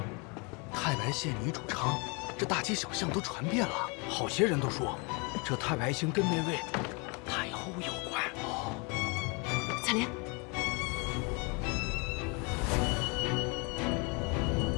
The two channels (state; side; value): quieter; right; 31.3 dB